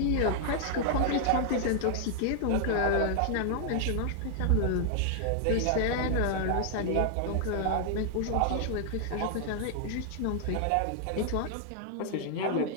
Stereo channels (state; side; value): different; both; correlation 0.00